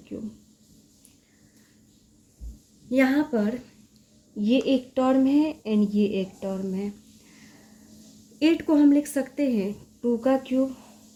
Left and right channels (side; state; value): both; identical; correlation 1.00